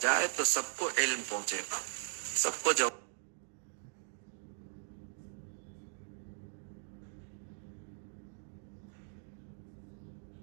جائے تو سب کو علم پہنچے گا، سب کو جواب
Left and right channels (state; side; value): silent; left; digital silence